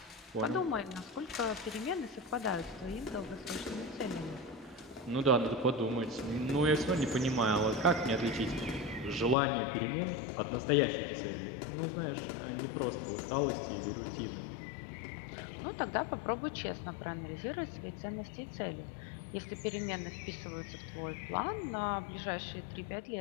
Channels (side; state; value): right; drops out; at 9.3 s